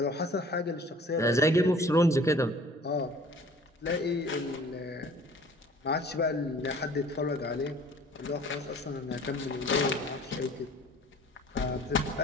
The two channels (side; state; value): both; normal; correlation 0.50